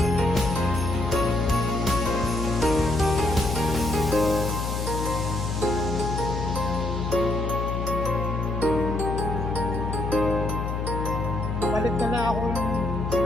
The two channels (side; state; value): left; noise; hum, 2 dB below the sound